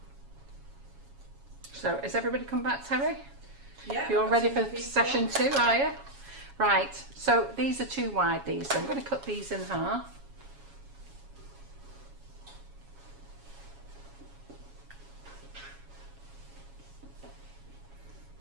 So, is everybody come back, Terry? Yeah. You're I've got ready some for pizza. session 2, are you? Right, so these are too wide, these, so I'm going to cut these in half.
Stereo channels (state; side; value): late; left; 7.2 ms